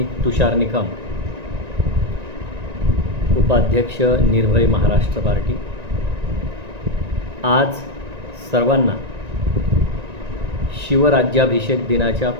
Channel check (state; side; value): late; left; 1.9 ms